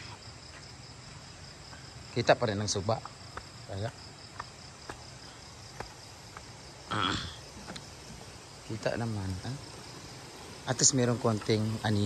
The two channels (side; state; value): both; identical; correlation 1.00